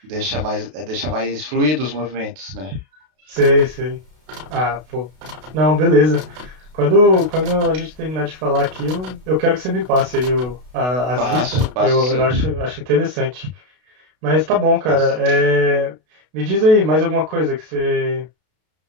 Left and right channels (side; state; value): left; late; 32 ms